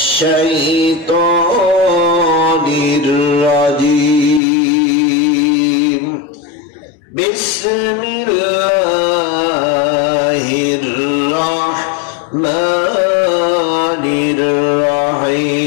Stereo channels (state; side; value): drops out; right; at 4.4 s